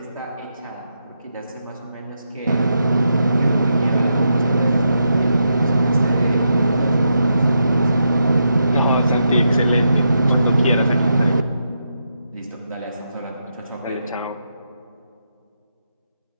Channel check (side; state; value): both; inverted; correlation -0.83